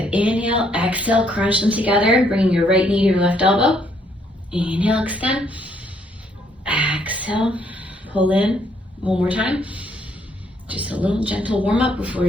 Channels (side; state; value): both; normal; correlation 0.69